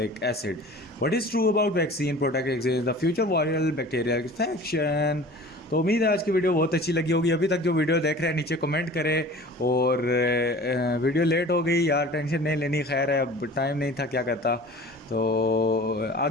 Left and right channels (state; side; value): normal; both; correlation 0.42